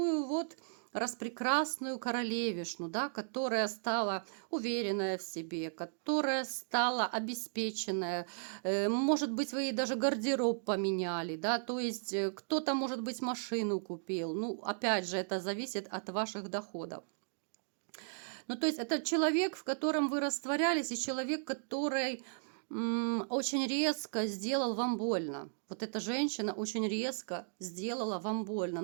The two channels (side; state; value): left; silent; digital silence